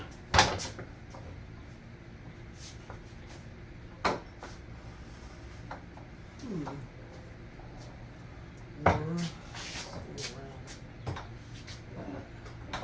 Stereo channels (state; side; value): identical; both; correlation 1.00